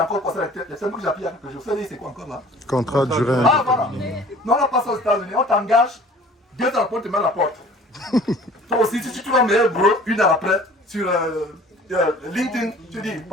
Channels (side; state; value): both; normal; correlation 0.48